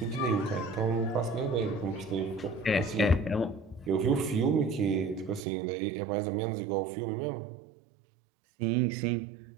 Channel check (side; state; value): left; drops out; at 5.5 s